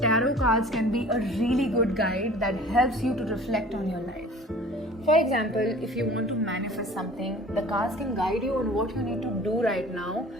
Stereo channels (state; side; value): normal; both; correlation 0.46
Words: cards can be a really good guide that helps you to reflect on your life. For example, if you want to manifest something, the cards can guide you on what you need to do right now